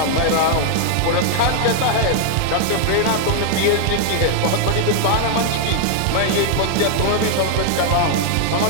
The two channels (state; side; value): different; both; correlation 0.00